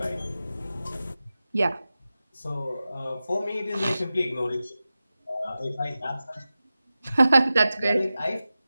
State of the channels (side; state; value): both; inverted; correlation -0.94